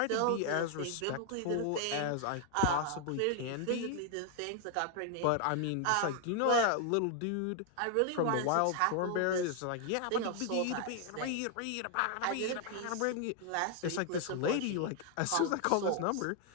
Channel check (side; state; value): both; different; correlation 0.00